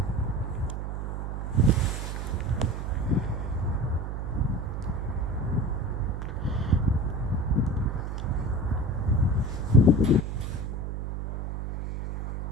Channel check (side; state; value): right; noise; hum, 4 dB below the sound